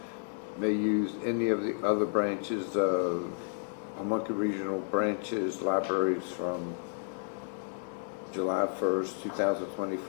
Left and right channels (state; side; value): silent; right; 57 dB below the other